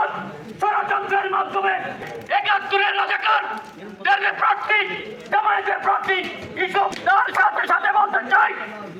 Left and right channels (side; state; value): both; identical; correlation 1.00